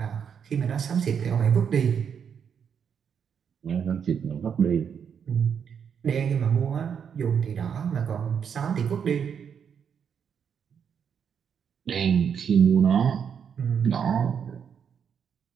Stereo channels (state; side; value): quieter; left; 7.4 dB